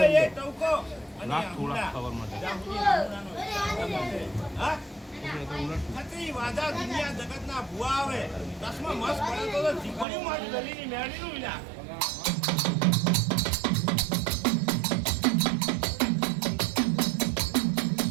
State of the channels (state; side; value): drops out; left; at 10.1 s